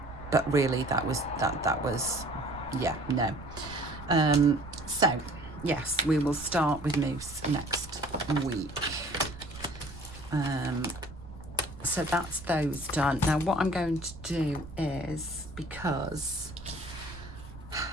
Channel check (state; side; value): noise; right; rumble, 15 dB below the sound